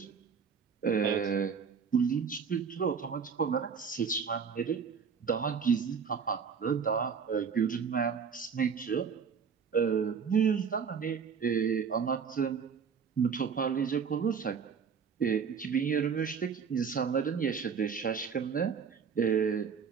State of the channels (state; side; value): quieter; left; 6.4 dB